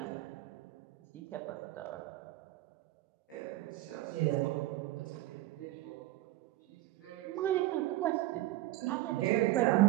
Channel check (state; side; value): quieter; left; 16.6 dB